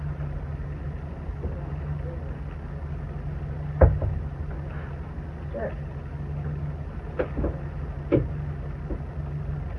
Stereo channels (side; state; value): both; identical; correlation 1.00